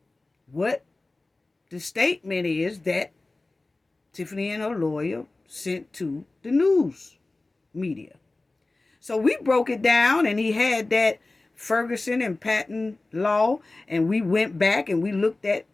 what the statement is that Tiffany and her lawyer sent to the news media. So we broke it down, and he had that Ferguson and Patton law, and we went back and we looked at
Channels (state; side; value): quieter; right; 3.1 dB